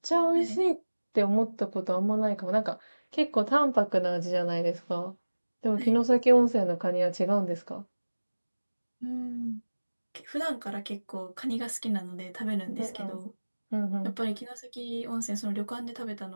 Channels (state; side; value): inverted; both; correlation -1.00